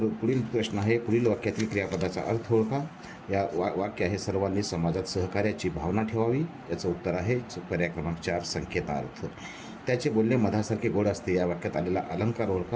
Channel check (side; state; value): both; identical; correlation 1.00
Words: पुढील प्रश्न आहे, पुढील वाक्यातील क्रियापदाचा अर्थ ओळखा. या वाक्य आहे, सर्वांनी समाजात सहकार्याची भावना ठेवावी. याचं उत्तर आहे पर्याय क्रमांक 4 संकेतार्थ. त्याचे बोलणे मधासारखे गोड असते. या वाक्यात आलेला अलंकार